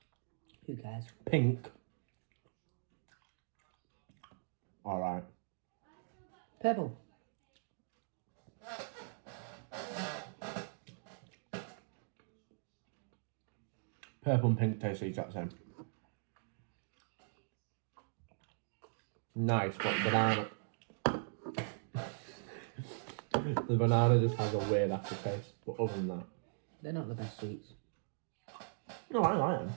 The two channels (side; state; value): left; silent; digital silence